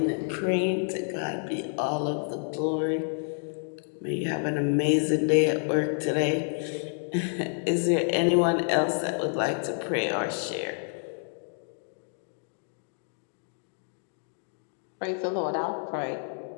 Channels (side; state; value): right; silent; 59 dB below the other